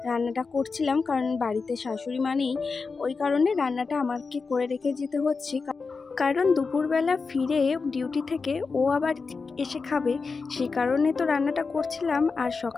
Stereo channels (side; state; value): right; quieter; 4.6 dB